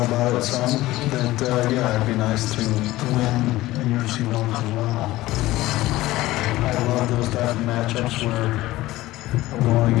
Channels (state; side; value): quieter; right; 17.3 dB